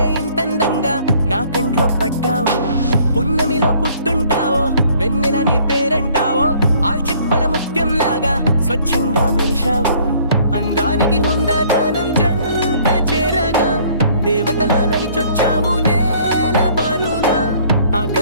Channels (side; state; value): both; inverted; correlation -0.58